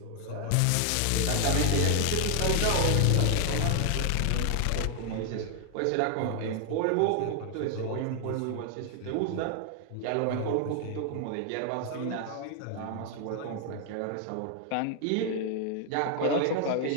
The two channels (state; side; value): different; both; correlation 0.00